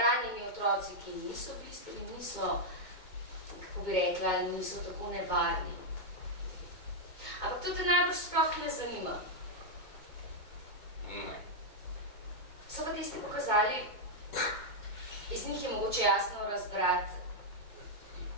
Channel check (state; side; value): late; right; 2.2 ms